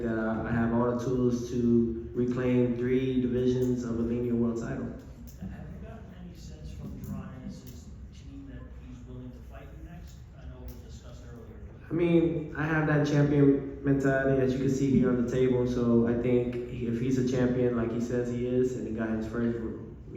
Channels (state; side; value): identical; both; correlation 1.00